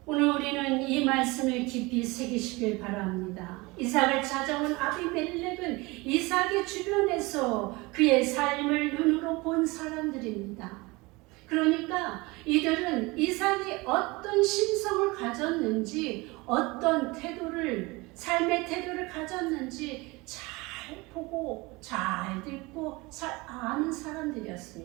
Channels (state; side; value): quieter; left; 23.9 dB